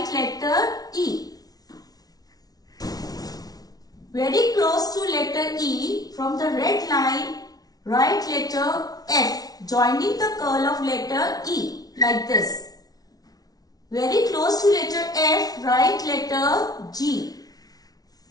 letter E. Very close to letter E, from the red line, write letter F, joining the curl of letter E, like this. Very close to letter F, write letter G.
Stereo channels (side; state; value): right; late; 0.18 ms